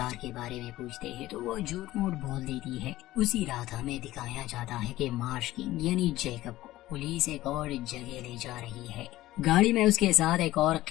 के बारे में पूछते हैं तो वो झूठ मूठ बोल देती है। उसी रात हमें दिखाया जाता है कि मार्श किंग यानी जैकब को पुलिस एक और जगह ले जा रही है। गाड़ी में उसके साथ एक और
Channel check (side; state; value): right; quieter; 16.2 dB